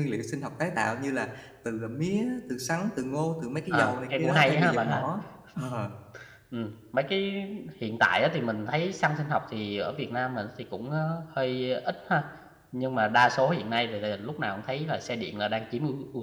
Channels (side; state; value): both; identical; correlation 1.00